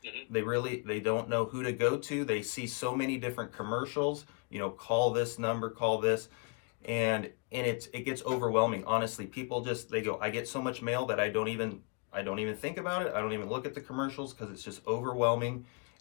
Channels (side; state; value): right; quieter; 34.2 dB